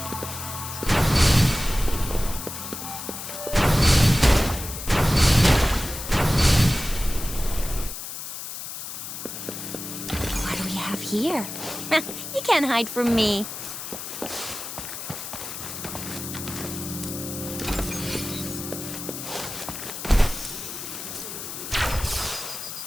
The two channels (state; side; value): noise; left; hiss, 8 dB below the sound